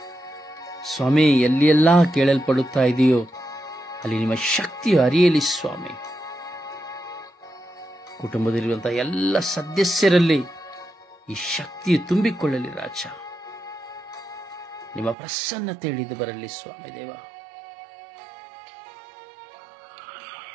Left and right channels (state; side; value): drops out; left; at 15.2 s